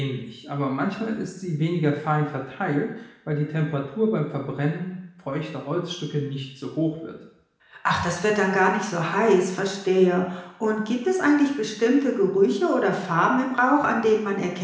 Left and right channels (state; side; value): identical; both; correlation 1.00